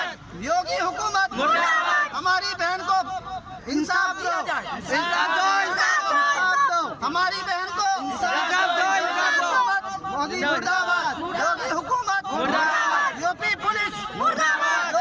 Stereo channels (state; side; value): identical; both; correlation 1.00